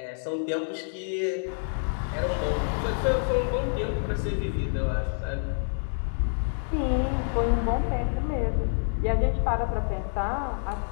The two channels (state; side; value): silent; right; digital silence